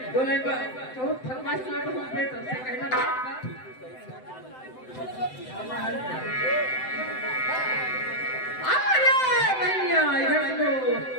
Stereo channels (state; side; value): late; right; 7.8 ms